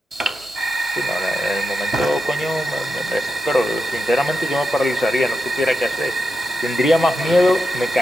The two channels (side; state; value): both; normal; correlation 0.87